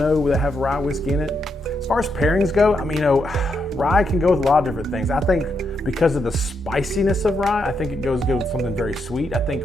that have rye whiskey in it. As far as pairings go, I mean, rye can go with a lot of different things. I think because of the spiciness of rye, I think it goes good with something very sweet. I think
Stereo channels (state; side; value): normal; both; correlation 0.80